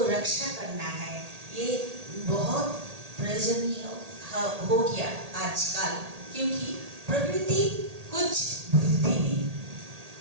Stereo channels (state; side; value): late; left; 1.8 ms